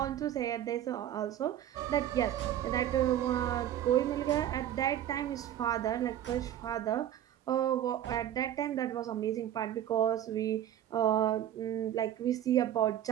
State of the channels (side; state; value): left; quieter; 11.4 dB